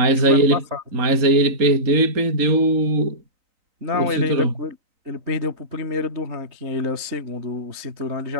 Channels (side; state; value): left; late; 3.9 ms